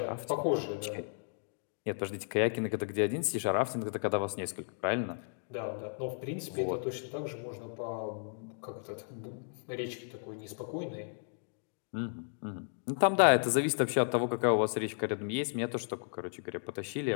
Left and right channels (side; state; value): right; silent; digital silence